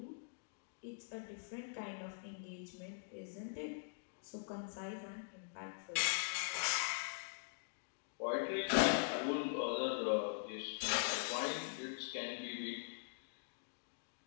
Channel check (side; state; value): right; silent; digital silence